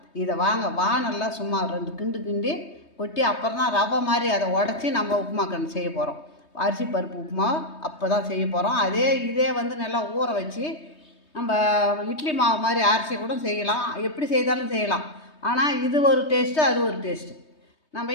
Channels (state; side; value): late; right; 3.2 ms